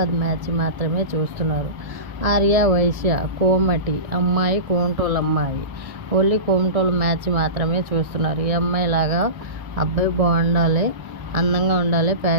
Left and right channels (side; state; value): left; late; 1.7 ms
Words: మ్యాచ్ మాత్రమే చూస్తున్నారు. ఆర్య వైశ్య, కోమటి అమ్మాయి, కోమటోలు అమ్మాయి. ఓన్లీ కోమటోలు మ్యాచ్ మాత్రమే చూస్తున్నారు. ఈ అమ్మాయి లాగా అబ్బాయి బాగుండాలి, అందంగా ఉండాలి,